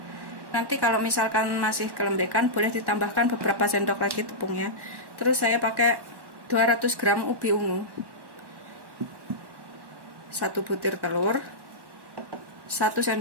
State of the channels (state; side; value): late; left; 1.1 ms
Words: Nanti kalau misalkan masih kelembekan, boleh ditambahkan beberapa sendok lagi tepungnya. Terus saya pakai 200 gram ubi ungu, 1 butir telur, 1